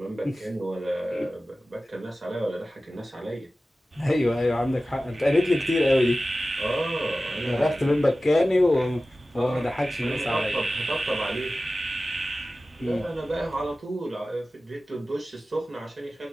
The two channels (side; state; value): both; normal; correlation 0.96